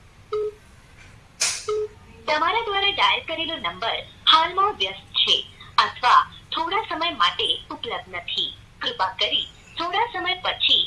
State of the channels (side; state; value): both; identical; correlation 1.00